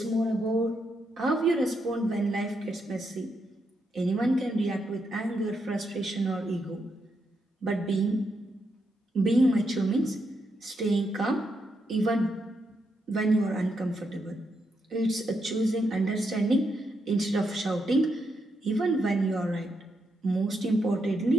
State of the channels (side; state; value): both; normal; correlation 0.81